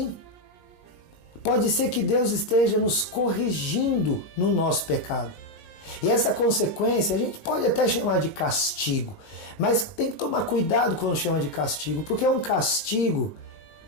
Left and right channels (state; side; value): late; right; 19 ms